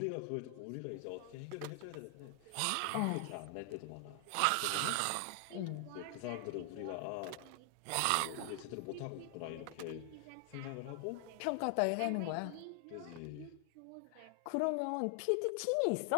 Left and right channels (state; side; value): different; both; correlation 0.00